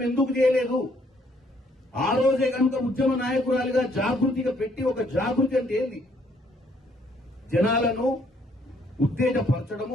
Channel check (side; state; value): both; normal; correlation 0.67